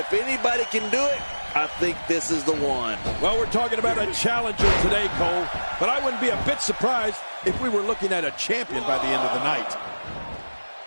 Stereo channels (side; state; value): both; inverted; correlation -1.00